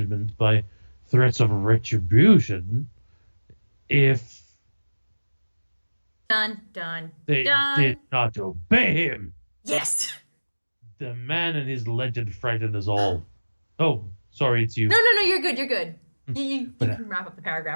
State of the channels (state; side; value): inverted; both; correlation -1.00